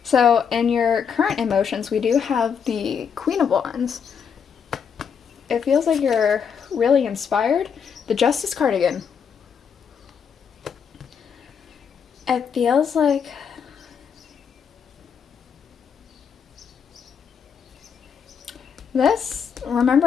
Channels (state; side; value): quieter; right; 7.0 dB